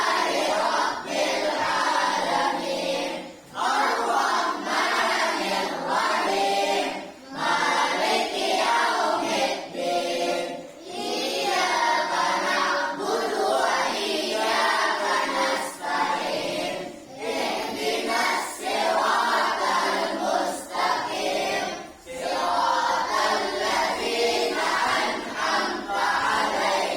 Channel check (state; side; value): identical; both; correlation 1.00